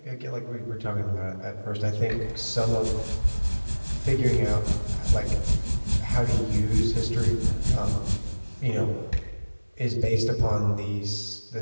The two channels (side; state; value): both; inverted; correlation -1.00